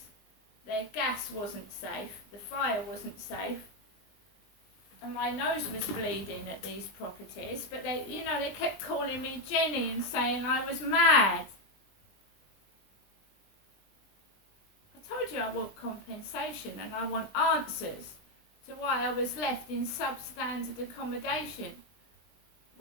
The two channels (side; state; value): right; late; 20 ms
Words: Their gas wasn't safe, the fire wasn't safe, and my nose was bleeding at these properties. But they kept calling me Jenny and saying I was mad. I told you I want compensation and I want answers to why I was left in substandard accommodation,